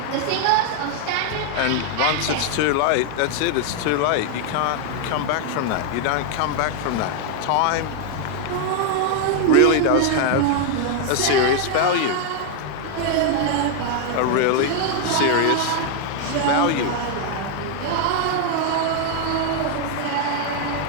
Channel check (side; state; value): both; different; correlation 0.00